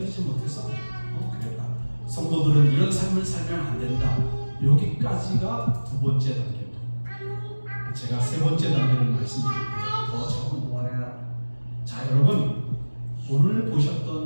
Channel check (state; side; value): inverted; both; correlation -1.00